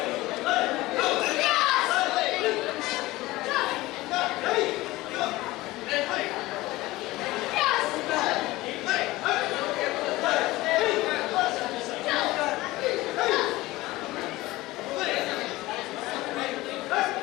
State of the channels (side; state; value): right; quieter; 18.9 dB